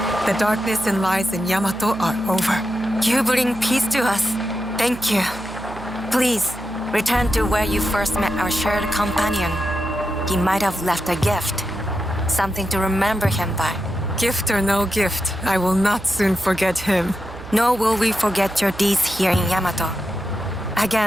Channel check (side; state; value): right; noise; hum, 15 dB below the sound